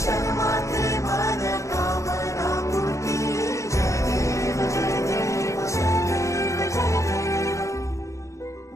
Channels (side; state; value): right; late; 0.15 ms